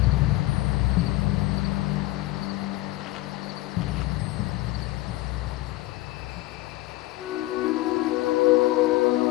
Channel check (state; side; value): quieter; right; 18.0 dB